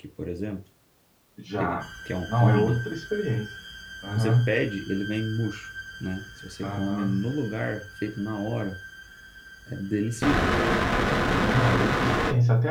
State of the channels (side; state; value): both; identical; correlation 1.00